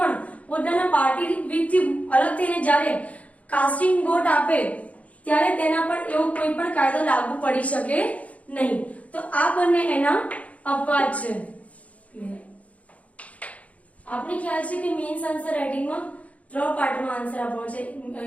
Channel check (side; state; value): right; late; 0.067 ms